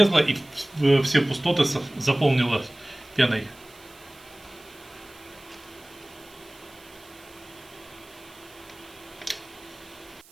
и все пустоты заполнило пеной.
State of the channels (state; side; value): noise; right; hiss, 24 dB below the sound